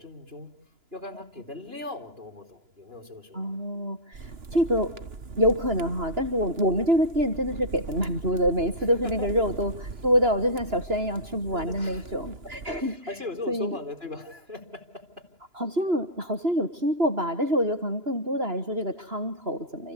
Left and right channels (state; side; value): late; left; 2.9 ms